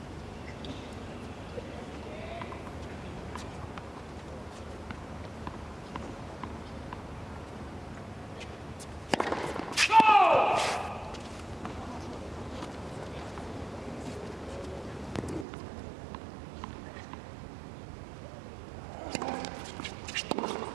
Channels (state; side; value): drops out; left; at 15.5 s